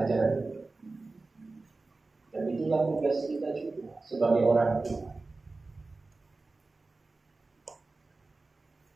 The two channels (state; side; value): quieter; left; 3.5 dB